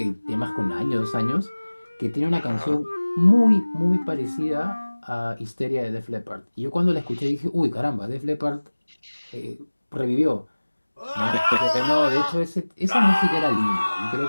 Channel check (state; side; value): inverted; both; correlation -1.00